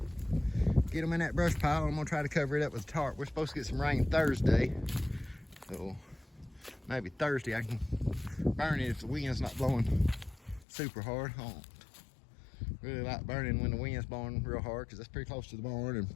get them in that brush pile. I'm gonna try to cover it up with a tarp. We're supposed to get some rain Thursday, so maybe Thursday I can burn it if the wind's not blowing super hard. I don't really like burning when the wind's blowing real hard because that's pretty close to the barn and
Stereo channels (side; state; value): right; drops out; at 10.7 s